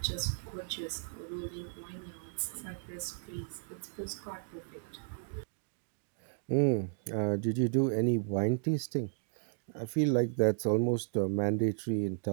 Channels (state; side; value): silent; left; digital silence